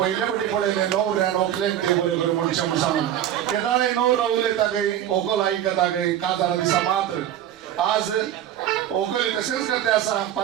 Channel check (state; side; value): quieter; left; 11.3 dB